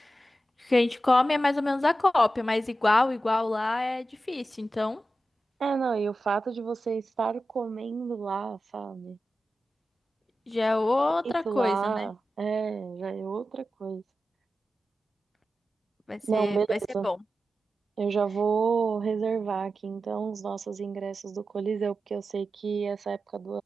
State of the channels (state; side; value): normal; both; correlation 0.92